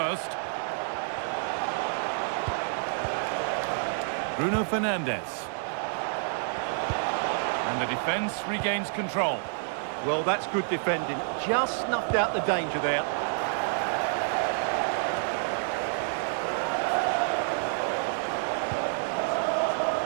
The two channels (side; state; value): left; silent; digital silence